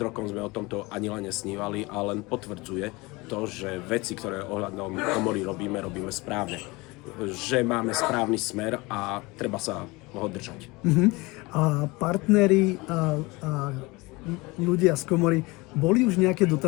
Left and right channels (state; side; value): quieter; right; 23.7 dB